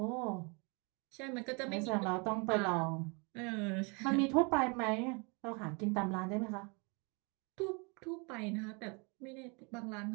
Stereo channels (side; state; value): left; quieter; 31.9 dB